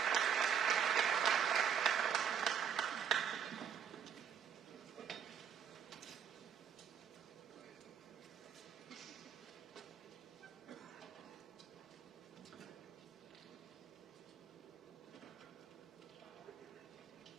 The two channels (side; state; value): left; quieter; 8.0 dB